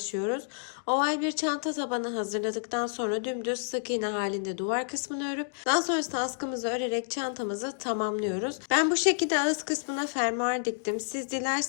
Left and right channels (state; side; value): silent; right; digital silence